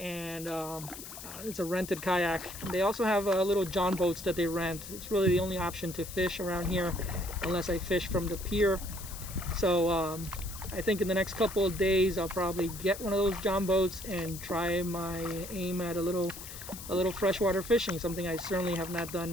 it's a rented kayak. They also have little John boats that they rent. It's really the only option to fish around here unless I fish from the pier. So I think in the next couple of days I'll probably get one of those John boats and try my aim at a little freshwater fishing, something I certainly have not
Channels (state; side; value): noise; left; hiss, 12 dB below the sound